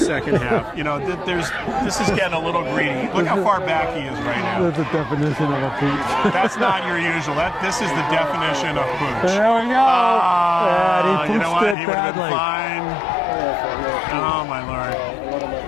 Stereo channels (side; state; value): right; drops out; at 11.8 s